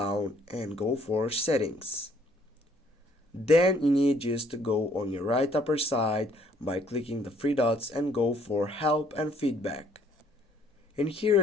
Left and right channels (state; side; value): normal; both; correlation 0.63